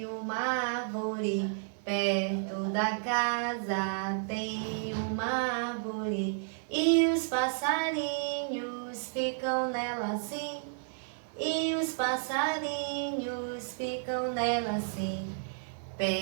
uma árvore. Perto da casa tem uma árvore. E os passarinhos ficam nela assim. E os passarinhos ficam nela assim.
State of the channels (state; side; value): silent; left; 56 dB below the other